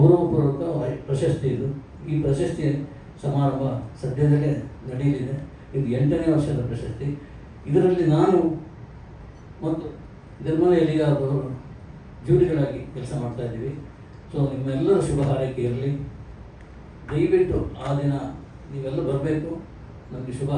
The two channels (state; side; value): identical; both; correlation 1.00